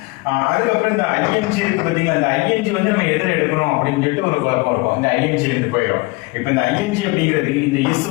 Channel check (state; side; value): quieter; right; 24.9 dB